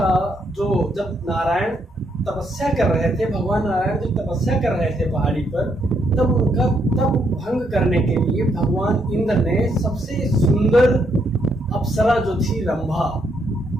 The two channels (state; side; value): normal; both; correlation 0.75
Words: जो जब नारायण तपस्या कर रहे थे, भगवान नारायण जब तपस्या कर रहे थे पहाड़ी पर, तब उनका तप भंग करने के लिए भगवान इंद्र ने सबसे सुंदर अप्सरा जो थी रंभा,